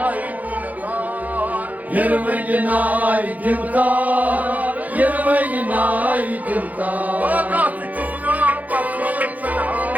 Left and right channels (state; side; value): late; left; 0.078 ms